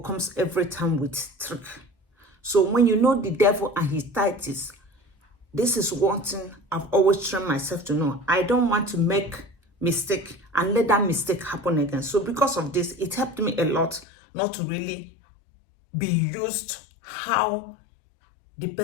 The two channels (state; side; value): drops out; right; at 14.1 s